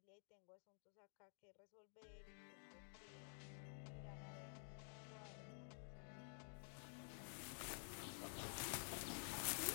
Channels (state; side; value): silent; right; digital silence